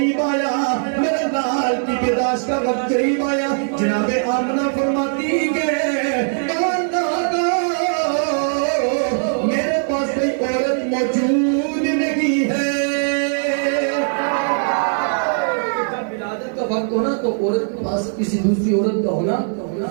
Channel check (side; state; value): left; silent; digital silence